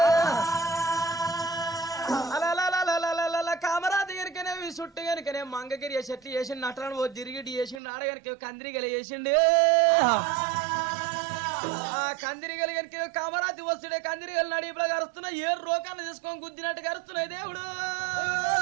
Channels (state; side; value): drops out; left; at 7.8 s